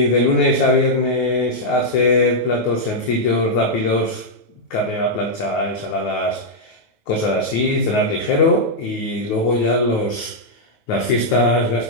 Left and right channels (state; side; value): late; right; 9.3 ms